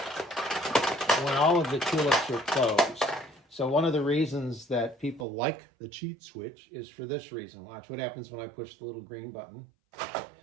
when all of the tulips are closed. So one of the reasons that people like the cheat switch is for this reason. Watch what happens when I push the little green button.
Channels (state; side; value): drops out; left; at 5.2 s